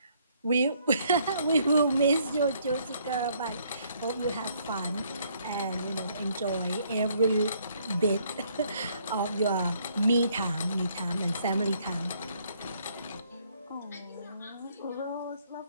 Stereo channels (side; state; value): both; inverted; correlation -0.67